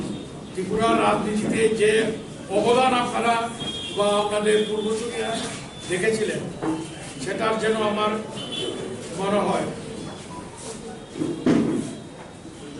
ত্রিপুরার রাজনীতিতে যে অবদান আপনারা বা আপনাদের পূর্বসূরীরা দেখেছিলেন, সেটার যেন আমার মনে হয়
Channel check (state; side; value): identical; both; correlation 1.00